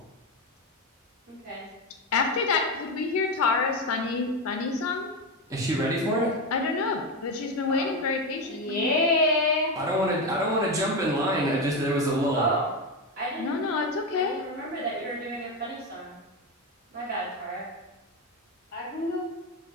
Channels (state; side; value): normal; both; correlation 0.13